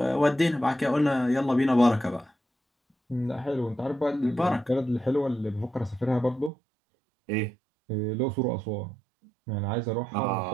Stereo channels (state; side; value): drops out; left; at 6.5 s